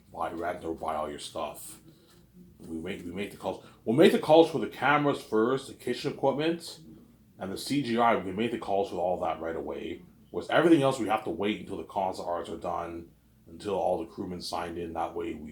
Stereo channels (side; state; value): both; identical; correlation 1.00